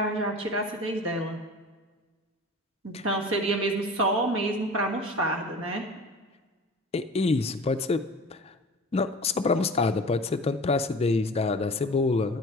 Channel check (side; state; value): both; normal; correlation 0.38